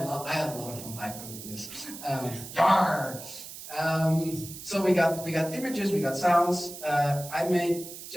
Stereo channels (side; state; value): right; noise; hiss, 12 dB below the sound